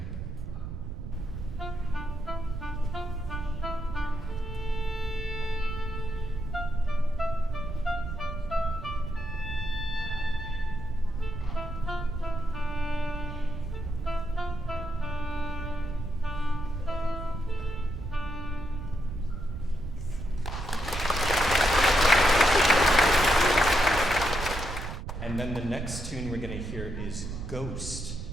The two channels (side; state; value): right; noise; rumble, 7 dB below the sound